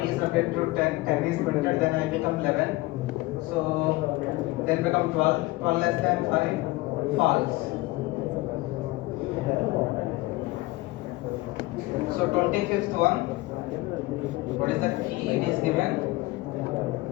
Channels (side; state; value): right; quieter; 20.7 dB